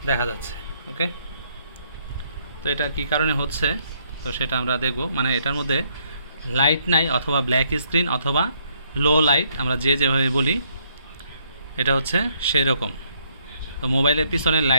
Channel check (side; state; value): both; inverted; correlation -0.70